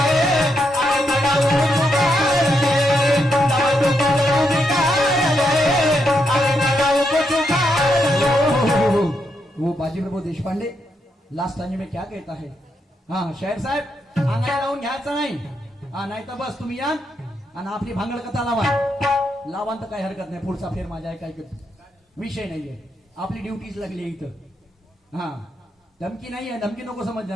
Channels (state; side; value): normal; both; correlation 0.80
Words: वो बाजी प्रभू देशपांडे लास्ट टाइम में क्या कहता है? हाँ शाहीर साहेब अंगाला लावून घ्यायचं नाही, हा नाही तर बस तुम्ही या आणि आपली भांगड कथा लावा तर काही हरकत नाही, पुढचा फेर माझ्या आहे, काही विषय नाहीये, आपली ड्युटीच लागली आहे इथं. हा धमकी नाहीये, धमकी नको